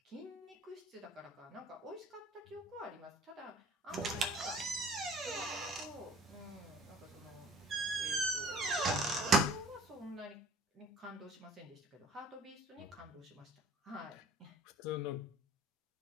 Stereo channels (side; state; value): both; normal; correlation 0.50